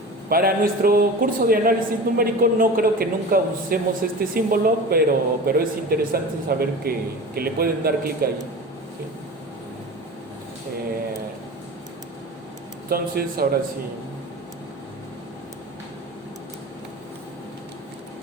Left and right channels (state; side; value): normal; both; correlation 0.34